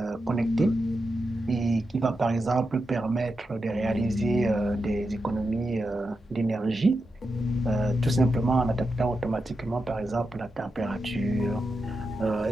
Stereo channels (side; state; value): both; normal; correlation 0.88